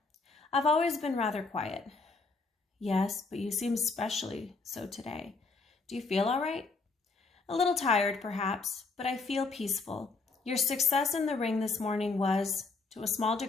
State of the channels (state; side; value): quieter; right; 4.0 dB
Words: "I've always been rather quiet." "Yes, but you seem especially so today. Do you feel all right?" "A little tired, perhaps, but I feel peaceful. Your success in the ring this morning was, to a small